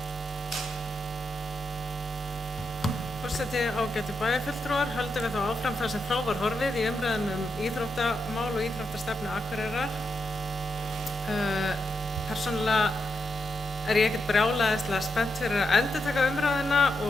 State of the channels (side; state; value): both; normal; correlation 0.84